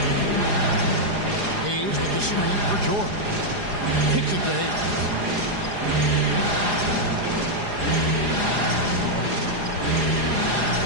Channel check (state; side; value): late; left; 4.9 ms